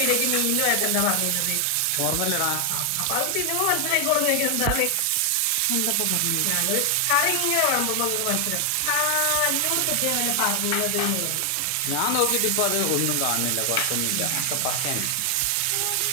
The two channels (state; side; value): different; both; correlation 0.00